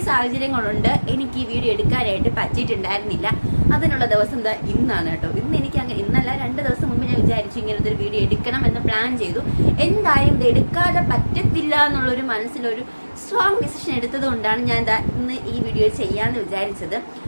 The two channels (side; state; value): both; inverted; correlation -1.00